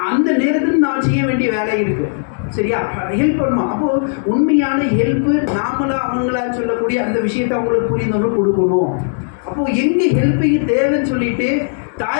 அந்த நேரத்தில் நான் செய்ய வேண்டிய வேலை இருக்குது. சரியா? ஹெல்ப் பண்ணுவோம். அப்போது உண்மையான ஹெல்ப்பு நாமளா அவங்களா சொல்லக்கூடிய அந்த விஷயத்தை அவங்களுக்கு புரிந்தவங்க கொடுக்கணும். அப்போது எங்கே ஹெல்ப்பிங் தேவைன்னு சொல்லிட்டு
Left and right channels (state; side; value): silent; right; digital silence